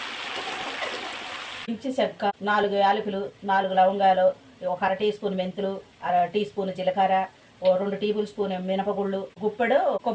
ఇచ్చి చెక్క, 4 యాలకులు, 4 లవంగాలు, ఒక 1/2 టీ స్పూన్ మెంతులు, 1/2 టీ స్పూన్ జీలకర్ర, 2 టేబుల్ స్పూన్ మినపగుళ్ళు, గుప్పెడు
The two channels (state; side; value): identical; both; correlation 1.00